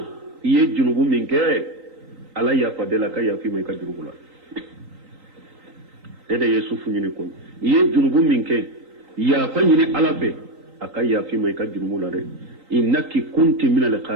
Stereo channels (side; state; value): left; late; 3.8 ms